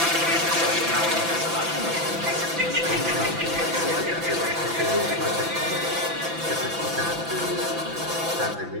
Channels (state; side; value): late; left; 5.9 ms